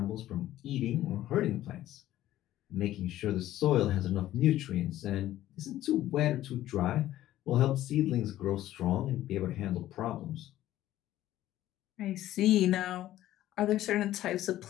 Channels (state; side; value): quieter; right; 13.9 dB